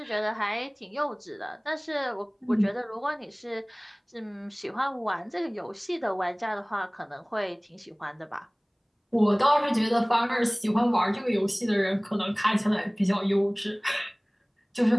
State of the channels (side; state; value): both; identical; correlation 1.00